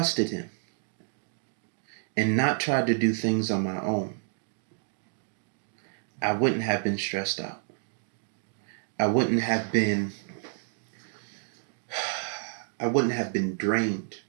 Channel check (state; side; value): silent; left; digital silence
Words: him and not tried to do things on my own, I wouldn't have been stressed out. I wouldn't have been drained.